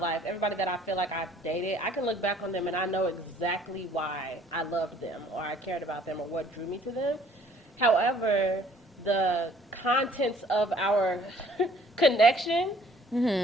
everybody that I feel like I've dated, I can look back on them and I know exactly why I loved them or I cared about them or what drew me to them. However, the contents of our connection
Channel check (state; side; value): normal; both; correlation 0.58